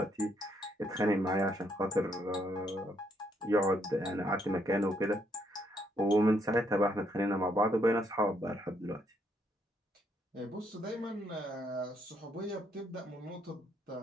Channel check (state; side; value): normal; both; correlation 0.72